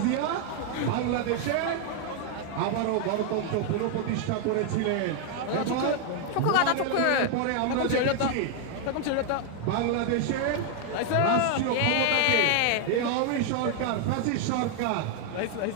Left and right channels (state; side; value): different; both; correlation 0.00